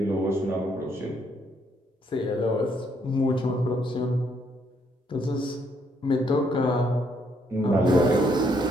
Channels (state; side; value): normal; both; correlation 0.71